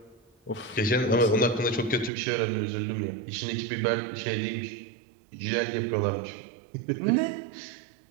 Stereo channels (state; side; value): drops out; left; at 2.1 s